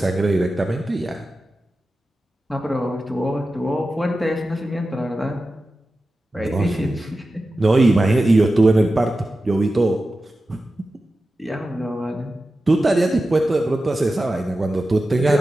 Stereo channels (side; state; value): both; normal; correlation 0.93